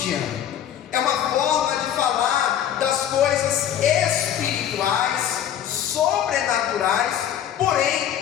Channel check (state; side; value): quieter; right; 10.1 dB